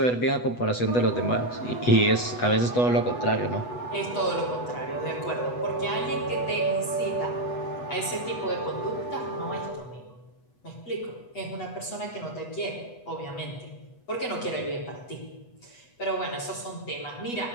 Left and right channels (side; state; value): right; late; 8.1 ms